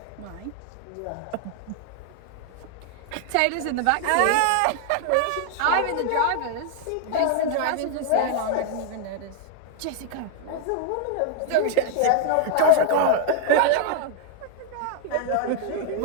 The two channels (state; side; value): different; both; correlation 0.00